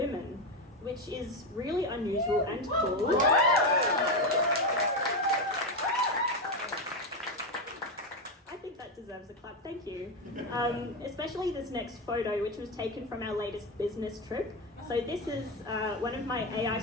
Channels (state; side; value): normal; both; correlation 0.11